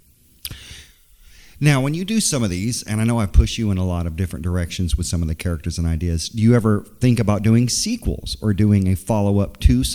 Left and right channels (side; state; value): both; identical; correlation 1.00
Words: Now, when you do some of these, and I know I push you in a lot of different directions with some of the characters and ideas, do you ever think about doing sequels or doing a follow-up to